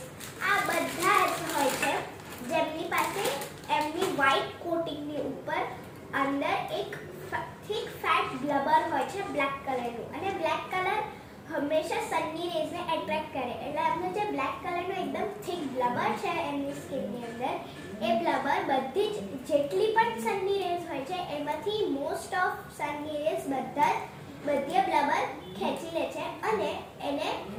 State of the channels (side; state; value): both; identical; correlation 1.00